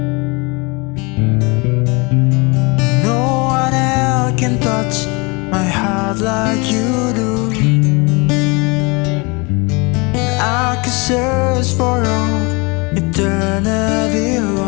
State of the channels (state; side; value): quieter; right; 28.4 dB